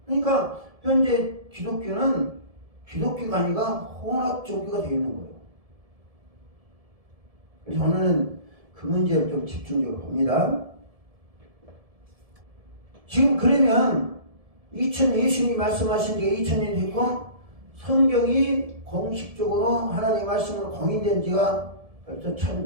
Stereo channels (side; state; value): left; late; 1.7 ms